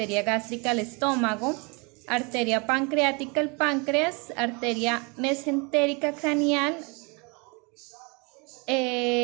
gástrica al estómago, arteria pancreática al páncreas, arteria mesentérica craneal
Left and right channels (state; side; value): quieter; left; 30.7 dB